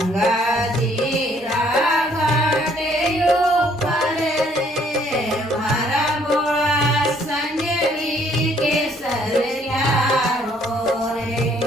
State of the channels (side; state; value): both; normal; correlation 0.64